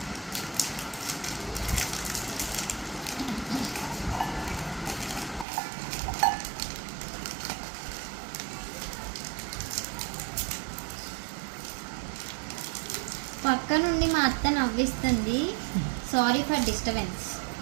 పక్క నుండి మా అత్త నవ్విస్తుంది. Sorry for disturbance.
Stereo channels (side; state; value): left; drops out; at 5.5 s